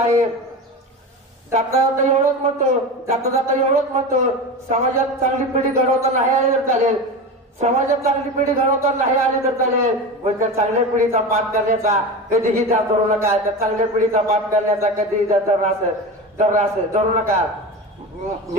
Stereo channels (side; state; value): both; normal; correlation 0.26